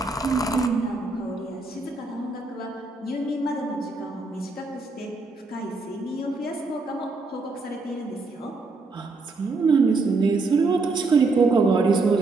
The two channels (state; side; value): quieter; left; 3.7 dB